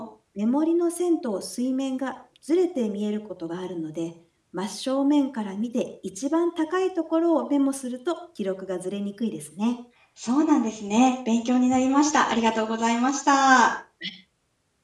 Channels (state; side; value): identical; both; correlation 1.00